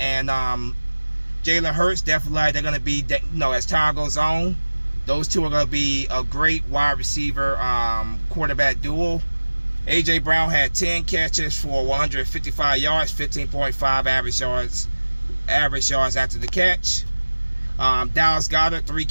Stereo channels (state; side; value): inverted; both; correlation -1.00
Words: Jalen Hurts, definitely they're going to be, as time goes on, those two are going to be a great wide receiver quarterback duo. AJ Brown had 10 catches for 155 yards, 15.5 average yards after the catch. Dallas Goedert, 3